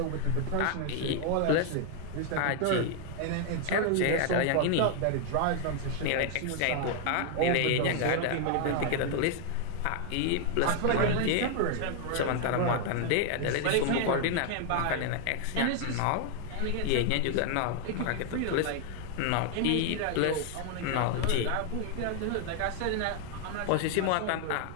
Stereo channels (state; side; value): different; both; correlation 0.00